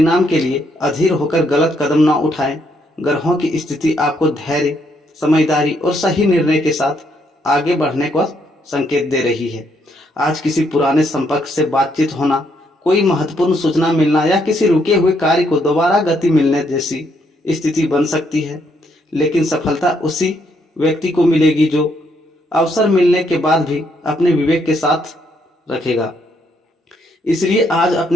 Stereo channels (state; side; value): normal; both; correlation 0.73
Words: के लिए अधीर होकर गलत कदम न उठाएं। ग्रहों की स्थिति आपको धैर्य, समझदारी और सही निर्णय के साथ आगे बढ़ने का संकेत दे रही है। आज किसी पुराने संपर्क से बातचीत होना, कोई महत्वपूर्ण सूचना मिलना या किसी रुके हुए कार्य को दोबारा गति मिलने जैसी स्थिति बन सकती है, लेकिन सफलता उसी व्यक्ति को मिलेगी जो अवसर मिलने के बाद भी अपने विवेक के साथ रखेगा। इसलिए आज